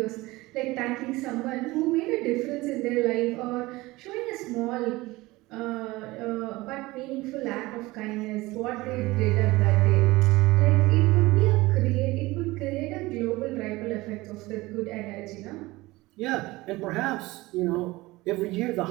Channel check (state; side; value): quieter; left; 20.4 dB